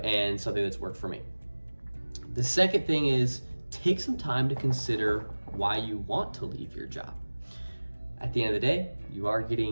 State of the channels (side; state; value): both; inverted; correlation -1.00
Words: something that's worked for me. The second thing is take some time to consider why you want to leave your job. At the end of the day, you are